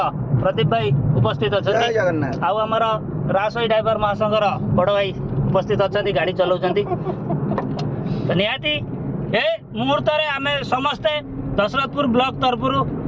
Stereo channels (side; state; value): both; identical; correlation 1.00